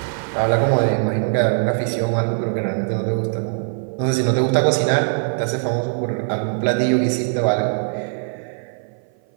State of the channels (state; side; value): silent; left; 56 dB below the other